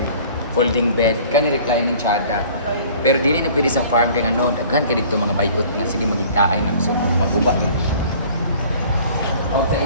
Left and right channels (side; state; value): both; inverted; correlation -0.49